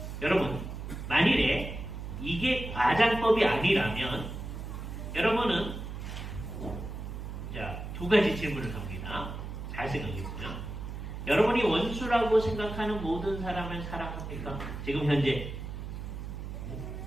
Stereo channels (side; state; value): right; noise; hum, 7 dB below the sound